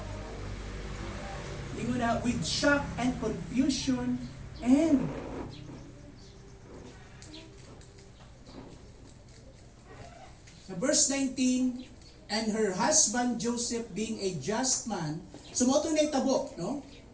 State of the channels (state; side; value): identical; both; correlation 1.00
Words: With shock and confusion and verse 19, and her husband Joseph being a just man, sumoto na itabo, no?